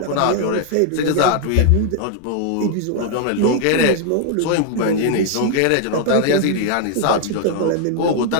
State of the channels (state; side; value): different; both; correlation 0.00